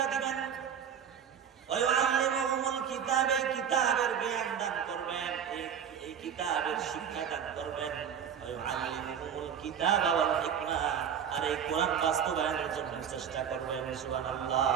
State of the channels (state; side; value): quieter; left; 8.2 dB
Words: দিবেন। ওয়াআল্লিমুহুমুল কিতাব, এই কিতাবের জ্ঞান দান করবেন, এই কিতাবের শিক্ষা দান করবেন। ওয়াআল্লিমুহুমুল কিতাবা ওয়াল হিকমা, আর এই কোরআন বাস্তবায়নের জন্য চেষ্টা করবেন। সুবহানাল্লাহ,